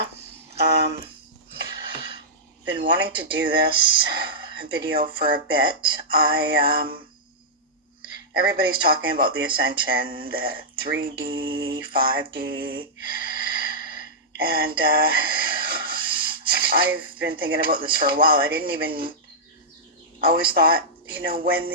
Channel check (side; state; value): both; normal; correlation -0.11